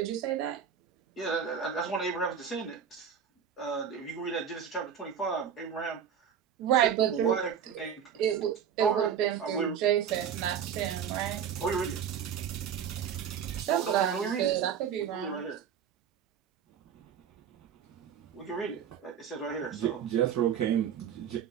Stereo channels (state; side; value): quieter; left; 8.1 dB